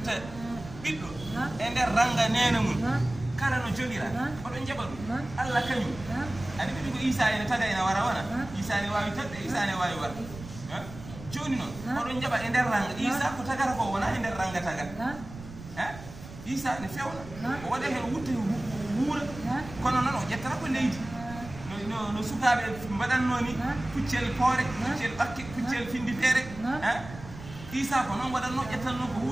بيدو اندر رانغا نينمون كارانو جوليرا أولون جبل الله كانيو أني بيدو عيسى ene tagayna wara wana Isa ne wawi tadde Isa ne wawi war joni non أولون جبل ender ranga Isa ko tagata ko wona ender ranga tagat Isa ne fewna o wada hen wutte wuura kono non o jettata ko leydi no sukaɓe mbaɗannoni puccel poore puccel ɓakke puccel findi feere Isa ko noon waɗatno ƴettanno ko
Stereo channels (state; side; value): noise; right; rumble, 14 dB below the sound